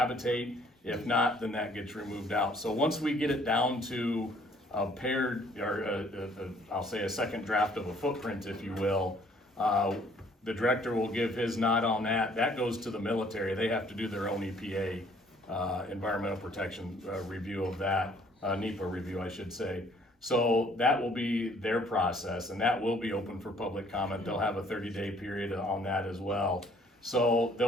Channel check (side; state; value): both; normal; correlation 0.60